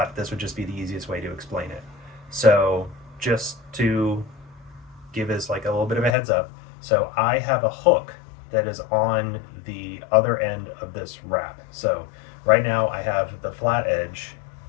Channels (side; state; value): right; drops out; at 6.2 s